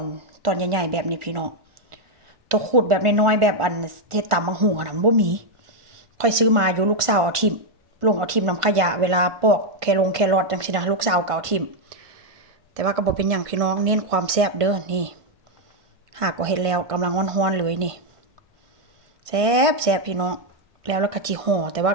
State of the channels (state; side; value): late; left; 1.5 ms